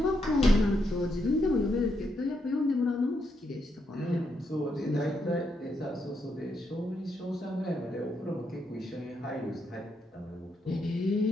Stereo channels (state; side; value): normal; both; correlation 0.80